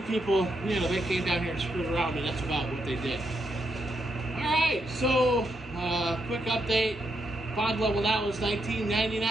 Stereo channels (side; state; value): both; normal; correlation 0.80